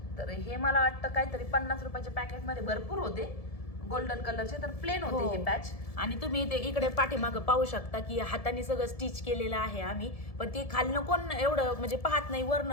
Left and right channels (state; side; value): late; right; 1.7 ms